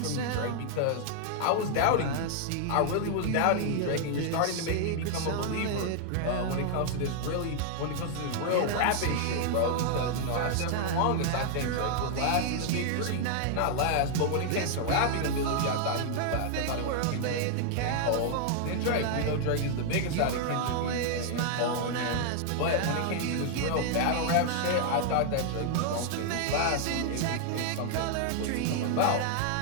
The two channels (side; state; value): both; different; correlation 0.00